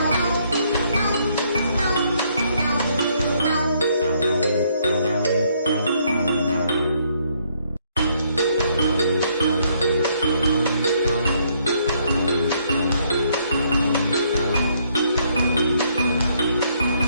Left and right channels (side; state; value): both; inverted; correlation -0.70